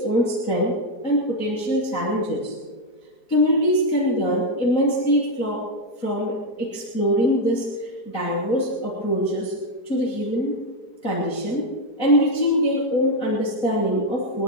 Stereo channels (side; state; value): right; late; 3.9 ms